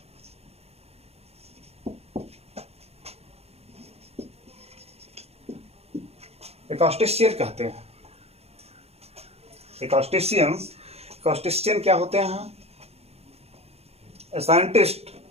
एकॉस्टिशियन कहते हैं। एकॉस्टिशियन क्या होते हैं? A scientist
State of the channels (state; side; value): late; left; 0.30 ms